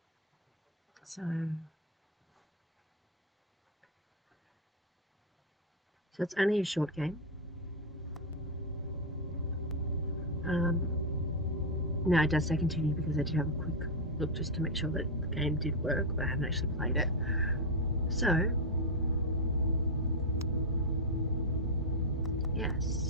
So it's only a short game. Now it does say continue because I did have a quick look just to make sure that the game did work, but I haven't actually played it. So,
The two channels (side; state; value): both; normal; correlation 0.02